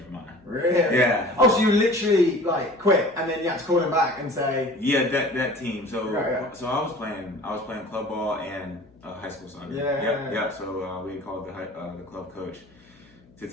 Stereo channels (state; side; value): noise; left; hum, 29 dB below the sound